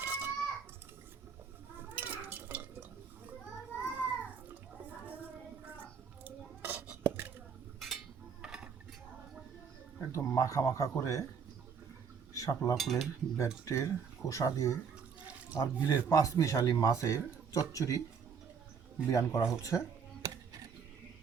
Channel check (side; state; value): left; quieter; 6.5 dB